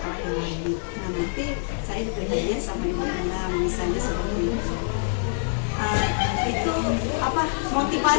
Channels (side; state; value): right; silent; digital silence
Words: lagi. Nah, nanti saya diberi hadiah sama ibu misalnya seperti itu. Itu apa,